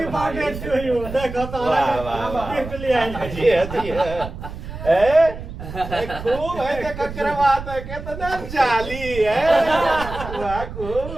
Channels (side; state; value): right; noise; rumble, 10 dB below the sound